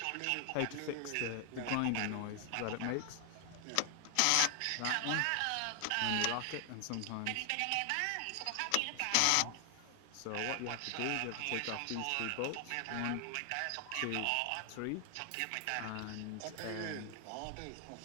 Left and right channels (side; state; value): both; different; correlation 0.00